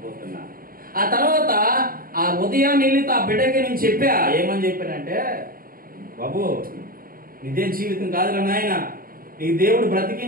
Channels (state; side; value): late; left; 0.42 ms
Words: ఆ తర్వాత ఆ ఉదయాన్ని వెళ్ళి ఆ బిడ్డకి నేను చెప్పా. ఏమని చెప్పానంటే, బాబు నిజం జీవితం కాదురా నాయన, నీకు దేవుడు